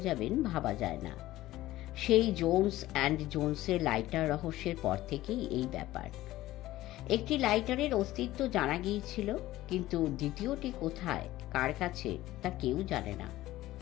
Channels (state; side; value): quieter; right; 16.1 dB